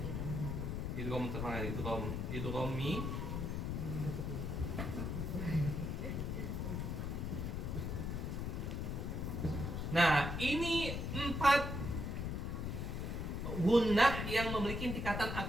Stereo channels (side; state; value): left; noise; rumble, 2 dB below the sound